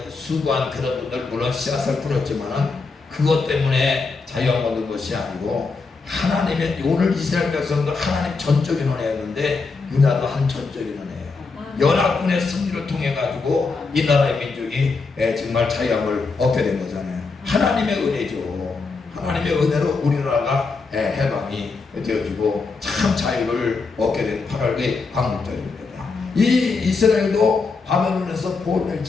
수고한 그런 분들 물론 씨앗을 뿌렸지만은 그것 때문에 자유를 얻는 것이 아니고 하나님의 오늘 이스라엘 백성도 하나님 전적 인원이었는데 우리나라도 한 전적 인원이에요. 연합군의 승리를 통해 가지고 이 나라의 민족이 정말 자유함을 얻게 된 거잖아요. 하나님의 은혜죠. 하나님의 은혜로 우리나라가 해방이 되어지고 참 자유를 얻게 된 8월의 광복절입니다. 이 이스라엘도 바벨론에서 포로될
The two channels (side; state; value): right; quieter; 4.3 dB